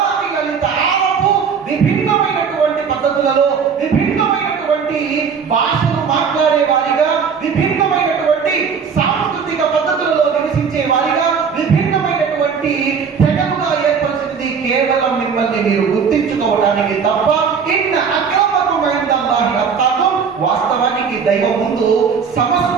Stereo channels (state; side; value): quieter; left; 6.3 dB